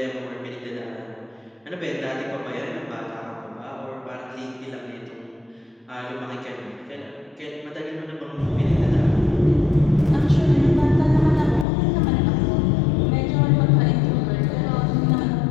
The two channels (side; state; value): right; drops out; at 11.7 s